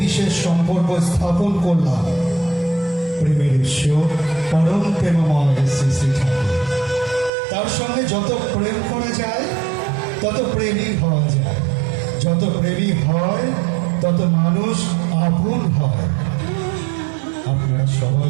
বিশেষ সম্পর্ক স্থাপন করলাম। প্রেমের ঈশ্বর পরম প্রেমময় শ্রী শ্রী ঠাকুর। তার সঙ্গে যত প্রেম করা যায় তত প্রেমী হওয়া যায়, যত প্রেমী হয় তত মানুষ আপন হয়। আপনারা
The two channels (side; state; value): left; drops out; at 7.3 s